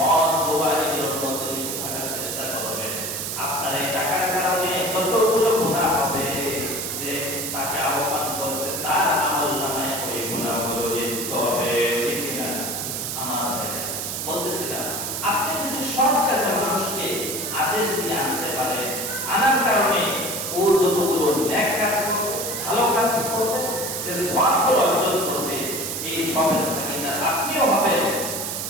সওয়াবগুলো অর্জন করবে, এই সওয়াবের ভাগীদার আপনিও হবেন।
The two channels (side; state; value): right; noise; hiss, 3 dB below the sound